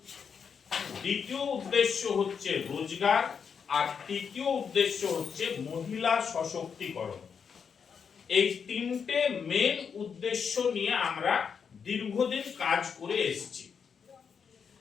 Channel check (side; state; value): right; quieter; 6.6 dB